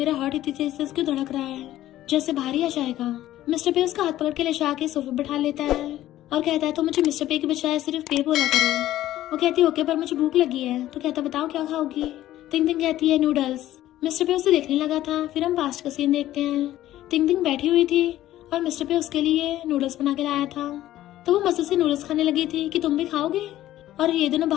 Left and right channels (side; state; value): right; quieter; 14.0 dB